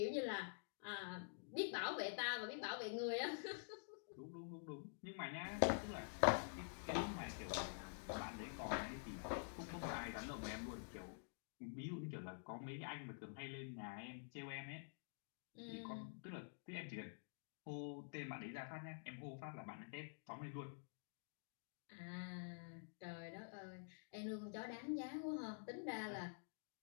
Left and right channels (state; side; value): silent; right; digital silence